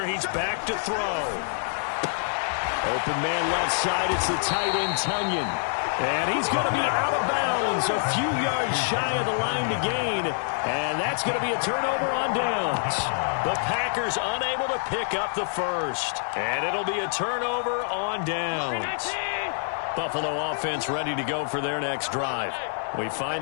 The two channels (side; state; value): right; silent; digital silence